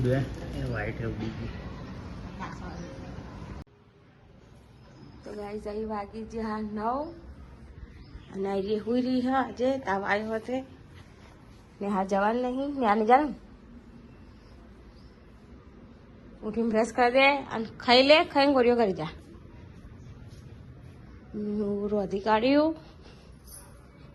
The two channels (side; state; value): both; identical; correlation 1.00